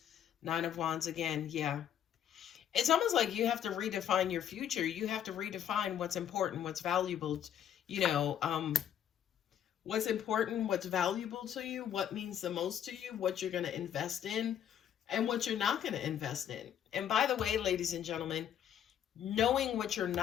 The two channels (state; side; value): quieter; right; 9.7 dB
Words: Nine of Wands again. Yeah, it's almost like you have to redefine your future. You have to redefine what's important, what's valuable. You know, what's important, what's valuable to you, what means the most to you, what you're going to invest in, and what you're not going to invest in. And by the way, ladies and gentlemen, knowing what you're